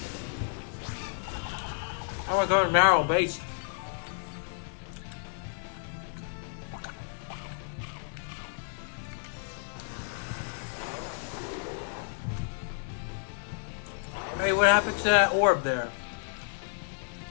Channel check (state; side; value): silent; right; digital silence